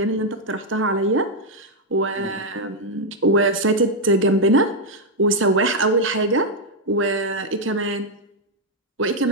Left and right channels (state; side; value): normal; both; correlation 0.00